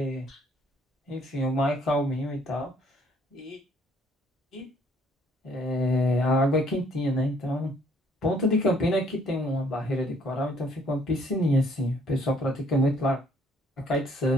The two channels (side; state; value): both; normal; correlation 0.63